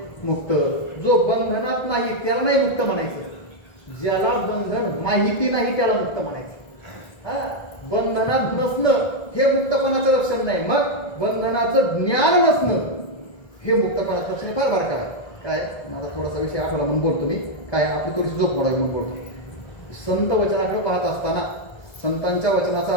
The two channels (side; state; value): right; late; 1.6 ms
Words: मुक्त. जो बंधनात नाही त्याला नाही मुक्त म्हणायचं. ज्याला बंधन माहिती नाही त्याला मुक्त म्हणायचं. हा, बंधनात नसणं हे मुक्तपणाचं लक्षण नाही. मग बंधनाचं ज्ञान नसणं हे मुक्तपणाचं लक्षण फार बारका आहे. काय माझा थोडासा विषय आठवला म्हणून बोलतो मी. काय आपली थोडीशी झोप मोडावी म्हणून बोलतो. संत वचनाकडे पाहत असताना, संतांच्या वचनाचा